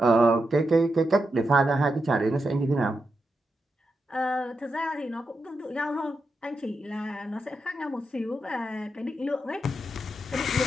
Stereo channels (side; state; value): both; normal; correlation 0.86